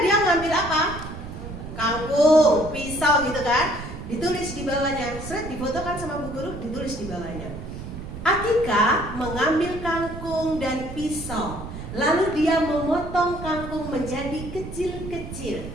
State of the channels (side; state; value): right; noise; rumble, 10 dB below the sound